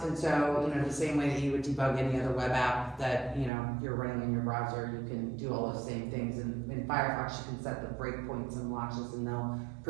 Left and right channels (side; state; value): left; drops out; at 3.5 s